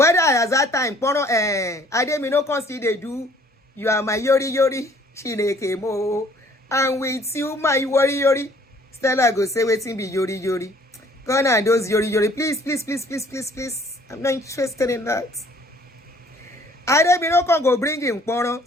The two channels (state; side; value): normal; both; correlation 0.58